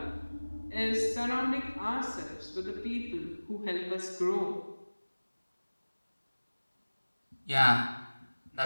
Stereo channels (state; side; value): inverted; both; correlation -1.00